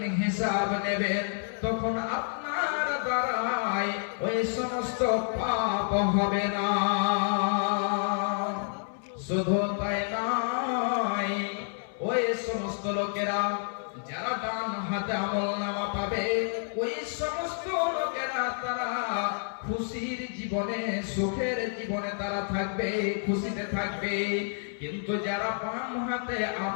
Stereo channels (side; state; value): right; silent; 58 dB below the other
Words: হিসাব নেবেন, তখন আপনার দ্বারাই ওই সমস্ত পাপ হবে না। শুধু তাই নয়, ওই সমস্ত লোকেরা যারা ডান হাতে আমলনামা পাবে ওই সমস্ত লোকেরা তারা খুশির জীবনে, সুখের জীবনে তারা থাকবে, খুশিতে থাকবে। কিন্তু যারা বাম হাতে